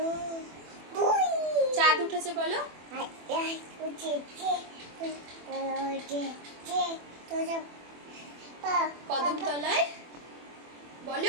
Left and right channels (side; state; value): left; late; 24 ms